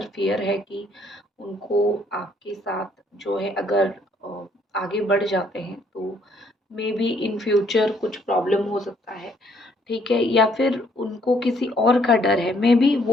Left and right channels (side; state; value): both; normal; correlation 0.66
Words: फ़ियर है कि उनको आपके साथ जो है अगर आगे बढ़ जाते हैं तो मे बी इन फ्यूचर कुछ प्रॉब्लम हो सकता है। ठीक है, या फिर उनको किसी और का डर है। मे बी